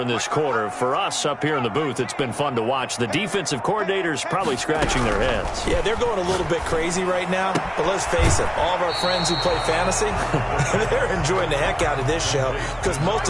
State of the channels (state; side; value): identical; both; correlation 1.00